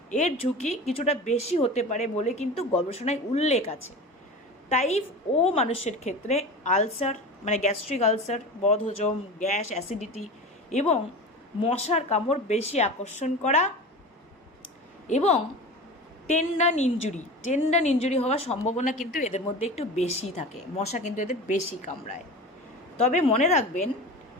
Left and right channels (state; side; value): normal; both; correlation 0.32